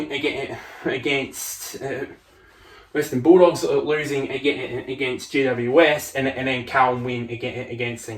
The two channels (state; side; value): identical; both; correlation 1.00